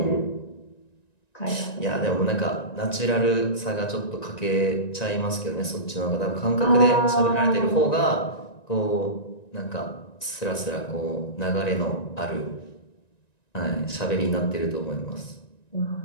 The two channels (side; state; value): right; late; 1.9 ms